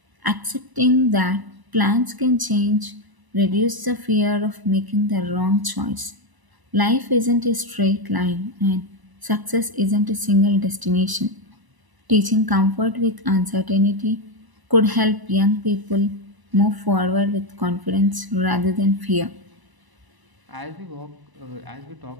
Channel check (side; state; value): left; late; 1.0 ms